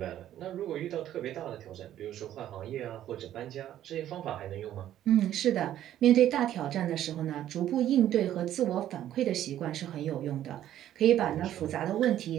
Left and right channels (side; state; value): left; quieter; 11.9 dB